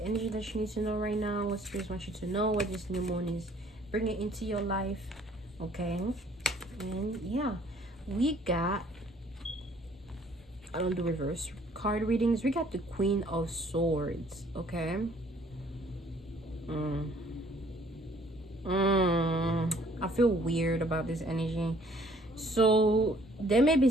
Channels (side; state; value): both; normal; correlation 0.59